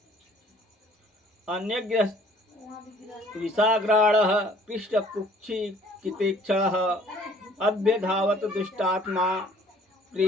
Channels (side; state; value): both; normal; correlation 0.56